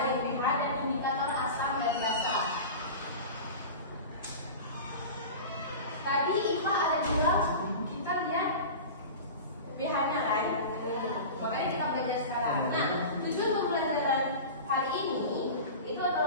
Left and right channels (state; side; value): inverted; both; correlation -0.32